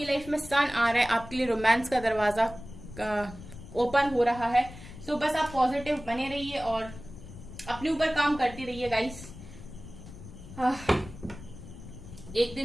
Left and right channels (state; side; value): noise; left; rumble, 15 dB below the sound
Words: लाइफ में सन आ रहा है, आपके लिए रोमांस का दरवाजा ओपन हो रहा है। सो बस आप पॉजिटिव बने रहिए और अपने ऊपर काम करते रहिए गाइस। एक